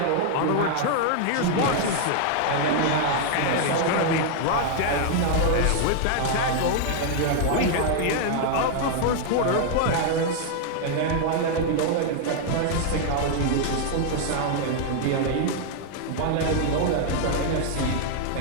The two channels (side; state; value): both; different; correlation 0.00